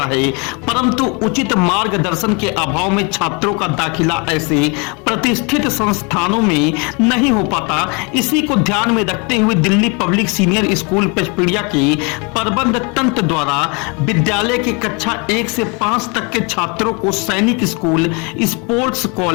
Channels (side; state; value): right; quieter; 31.5 dB